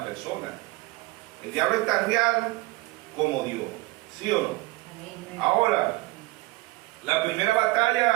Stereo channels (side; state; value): left; quieter; 21.8 dB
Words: persona. El diablo es tan real como Dios, ¿sí o no? Amén. Ahora, la primera